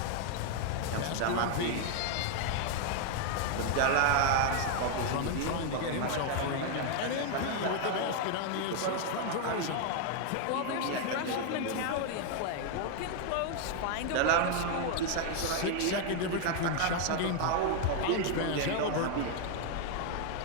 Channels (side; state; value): both; different; correlation 0.00